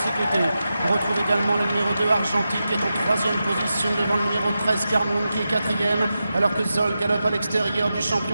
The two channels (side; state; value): both; inverted; correlation -0.90